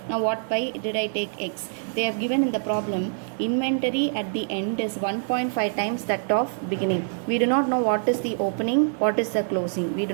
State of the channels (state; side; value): silent; left; digital silence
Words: Now why did I take x? They have given in the problem inventory at the end is 1.5 times that of beginning. We do not know what is the opening, what is the closing. We do